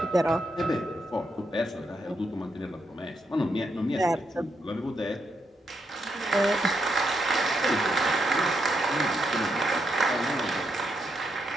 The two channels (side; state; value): both; normal; correlation 0.80